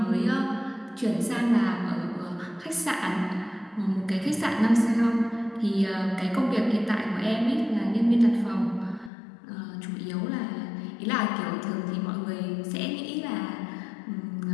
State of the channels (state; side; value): drops out; right; at 9.1 s